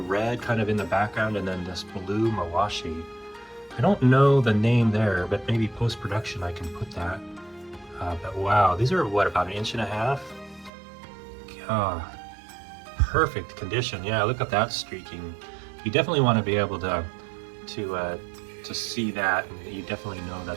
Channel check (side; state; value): left; drops out; at 10.7 s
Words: kind of in the background, and then this blue mawashi. I don't know the name there, but maybe post-production I can put that. But wow, these are what, about 1.5 inches? Perfect condition. Yeah, look at that streaking. You definitely want to be able to see that, and you definitely know